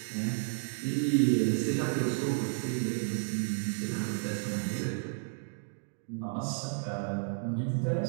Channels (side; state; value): left; silent; digital silence